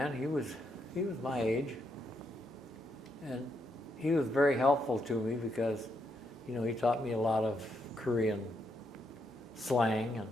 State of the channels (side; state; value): both; normal; correlation 0.78